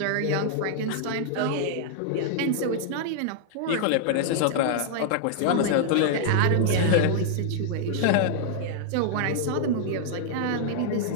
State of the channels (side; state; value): both; different; correlation -0.01